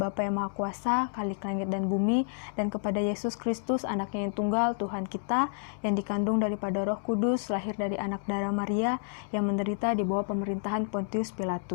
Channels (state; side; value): silent; right; digital silence